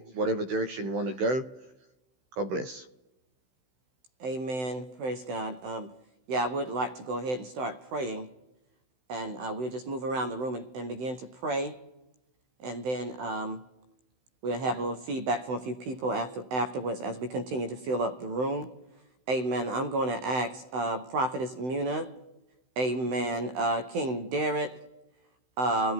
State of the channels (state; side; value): late; left; 16 ms